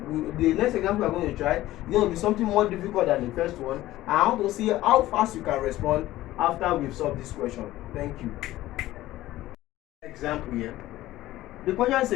the next example we're going to try. It's going to be something more difficult than the first one. And I want to see how fast you can respond after we've solved this question. Thank you. Example here. The question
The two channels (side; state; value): right; quieter; 15.8 dB